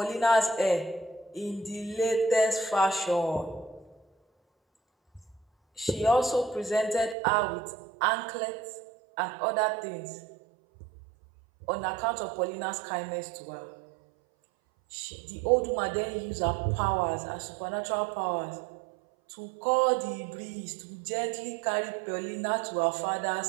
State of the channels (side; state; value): left; drops out; at 7.2 s